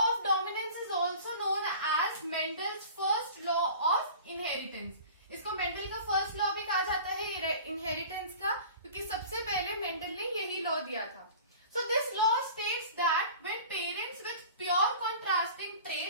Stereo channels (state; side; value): inverted; both; correlation -0.42